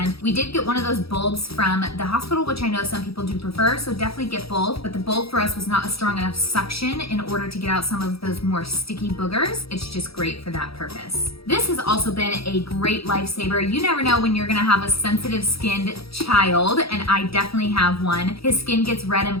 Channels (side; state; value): right; late; 0.76 ms